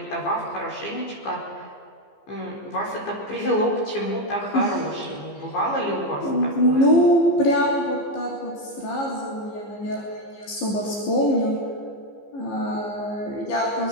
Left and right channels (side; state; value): right; late; 15 ms